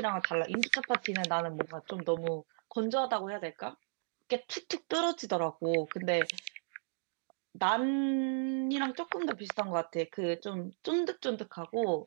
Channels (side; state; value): left; silent; digital silence